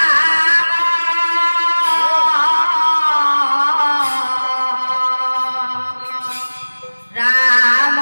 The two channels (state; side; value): inverted; both; correlation -1.00